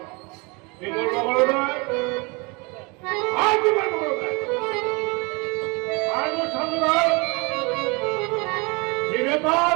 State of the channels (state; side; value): quieter; left; 28.3 dB